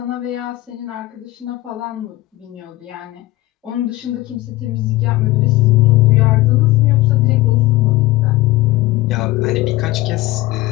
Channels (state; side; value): quieter; right; 18.1 dB